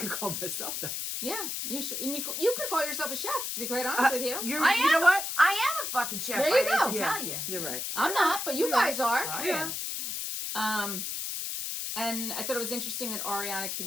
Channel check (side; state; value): left; noise; hiss, 3 dB below the sound